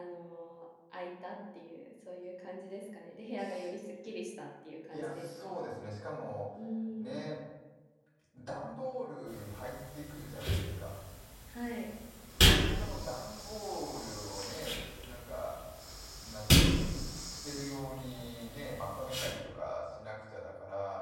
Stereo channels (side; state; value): both; identical; correlation 1.00